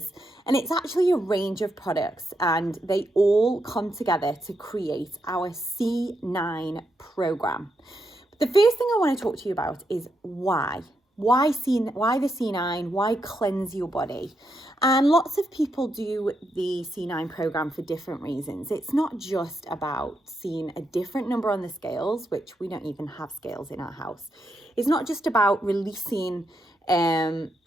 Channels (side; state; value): both; normal; correlation 0.82